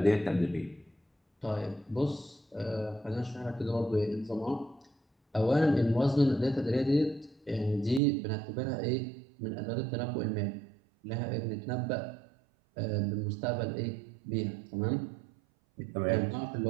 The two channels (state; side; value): drops out; left; at 8.0 s